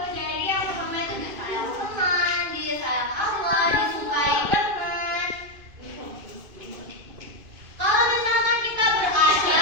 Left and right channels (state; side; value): late; left; 2.5 ms